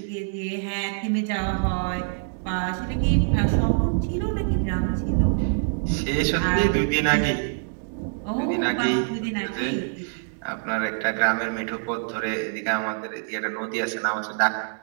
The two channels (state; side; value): silent; left; digital silence